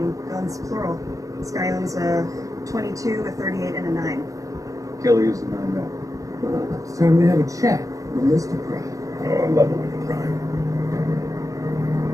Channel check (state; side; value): late; left; 0.16 ms